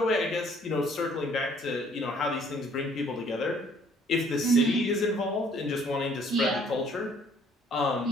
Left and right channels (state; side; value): normal; both; correlation 0.60